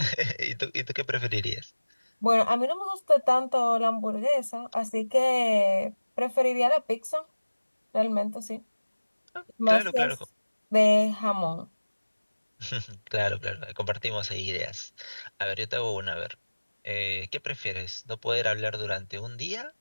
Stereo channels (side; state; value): both; inverted; correlation -1.00